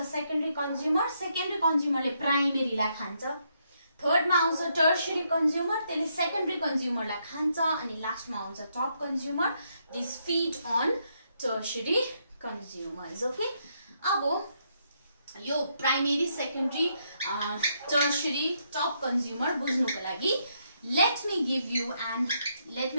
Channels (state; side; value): inverted; both; correlation -0.76